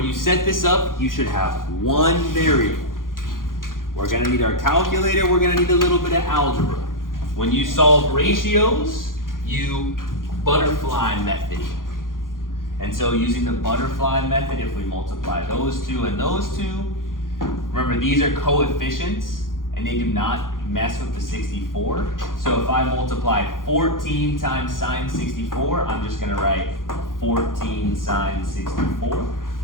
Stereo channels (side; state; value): right; late; 0.90 ms